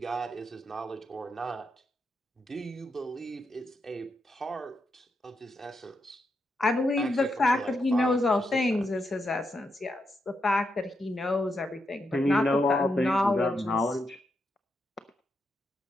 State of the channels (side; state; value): both; normal; correlation 0.83